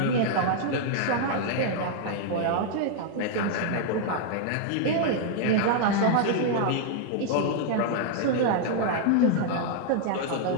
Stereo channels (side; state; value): both; different; correlation 0.00